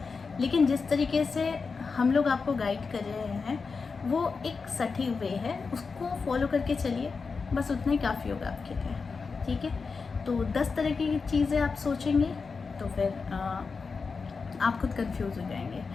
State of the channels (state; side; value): quieter; right; 4.8 dB